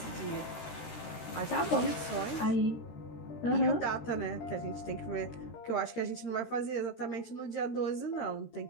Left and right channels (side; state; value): right; late; 13 ms